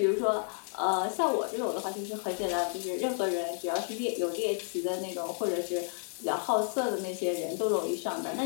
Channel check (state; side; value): silent; right; 57 dB below the other